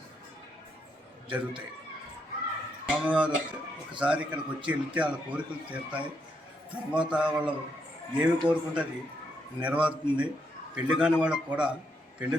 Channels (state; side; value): normal; both; correlation 0.78